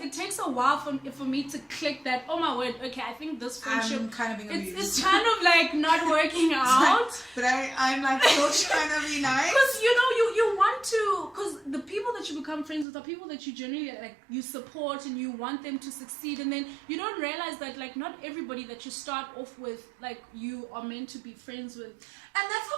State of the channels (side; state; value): left; drops out; at 12.9 s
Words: takes a while for me to click that, oh my word, okay, I think this friendship, I'm kind of being abused. It's kind of like not working out. But I'm like still trying to be nice. Because, you know, you want to, because the people that you become friends with are people that you generally, like, you support and you want them to succeed. And then you don't realize that, like, not everybody that you start off with, like, you are meant to be friends with. And that's